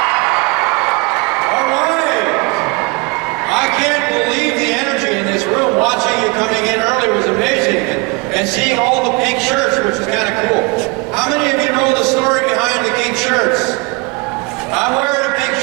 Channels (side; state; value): left; quieter; 28.0 dB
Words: All right. I can't believe the energy in this room. Watching you coming in early was amazing. And seeing all the pink shirts, which is kind of cool. How many of you know the story behind the pink shirts? I'm wearing a pink